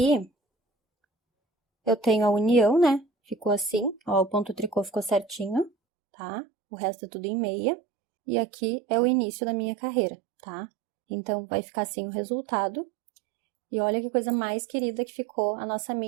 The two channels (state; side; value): drops out; left; at 5.7 s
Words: eu tenho a união, né? Ficou assim, ó, o ponto tricô ficou certinho, tá? O resto é tudo em meia. E aqui é o início da minha carreira, tá? Então, vai ficar assim o resultado. E olha que coisa mais querida que ficou a nossa